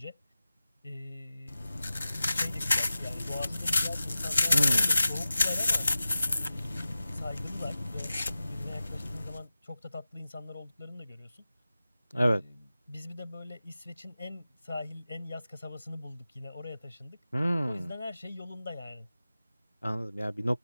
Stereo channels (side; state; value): both; inverted; correlation -0.94